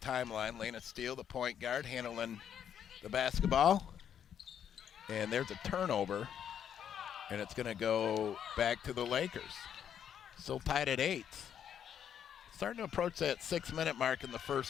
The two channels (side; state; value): right; quieter; 8.9 dB